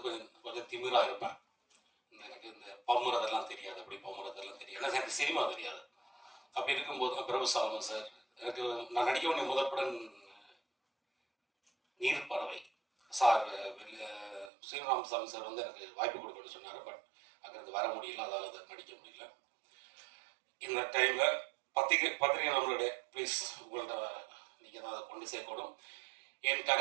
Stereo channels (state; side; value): drops out; left; at 14.5 s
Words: கொஞ்சம் திமிராக இருப்பேன். எனக்கு இந்த பம்முறதெல்லாம் தெரியாது, அப்படி பம்முறதெல்லாம் தெரியாது, ஏன்னா எனக்கு சினிமா தெரியாது. அப்படி இருக்கும்போது தான் பிரபு சாலமன் சார் எனக்கு நான் நடிக்க வேண்டிய முதல் படம் நீர்ப்பறவை சார், ஸ்ரீராமசாமி சார் வந்து எனக்கு வாய்ப்பு கொடுக்கணும்னு சொன்னார். பட் அங்கிருந்து வர முடியல, அதால் அதை நடிக்க முடியல. இந்த டைமில் பத்திரிகை நண்பர்களே, ப்ளீஸ் உங்கள்கிட்ட நீங்கள் தான் அதை கொண்டு சேர்க்கணும். என்